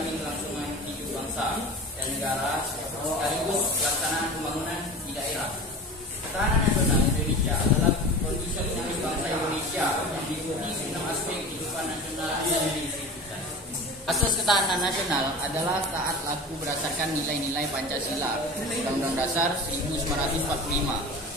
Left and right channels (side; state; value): both; normal; correlation 0.34